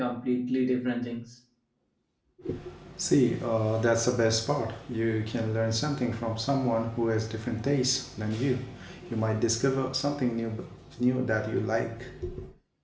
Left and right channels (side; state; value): both; identical; correlation 1.00